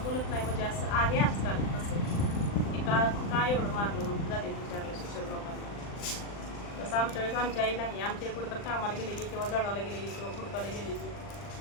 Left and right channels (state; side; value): late; right; 39 ms